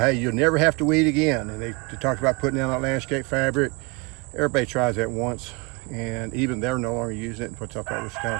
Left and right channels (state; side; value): quieter; left; 28.4 dB